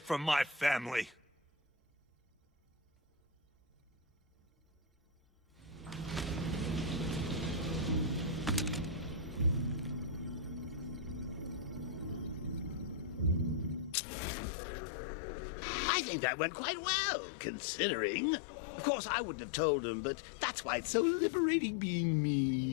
my family. I think that went quite well, considering. Of course, I wouldn't have told him, but that's why it's so liberating being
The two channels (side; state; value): right; drops out; at 14.0 s